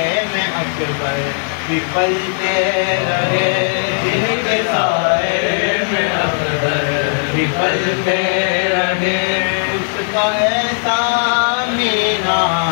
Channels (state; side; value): silent; right; digital silence